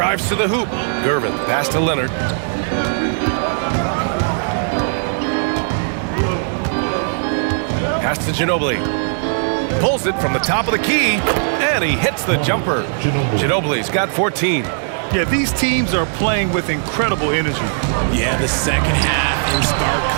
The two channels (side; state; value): left; silent; digital silence